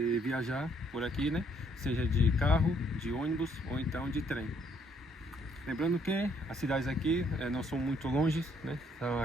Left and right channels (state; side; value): normal; both; correlation 0.67